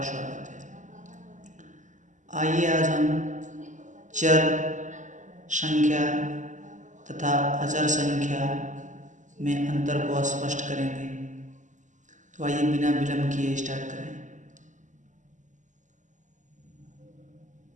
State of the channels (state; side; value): late; left; 0.36 ms